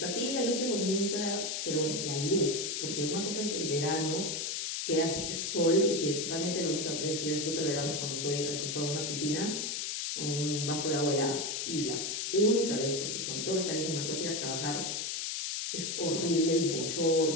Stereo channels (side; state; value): left; noise; hiss, 2 dB below the sound